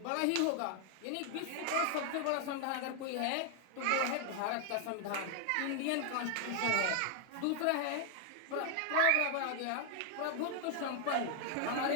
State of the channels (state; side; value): different; both; correlation 0.00